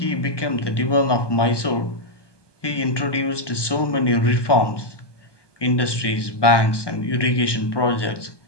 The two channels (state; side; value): late; right; 1.2 ms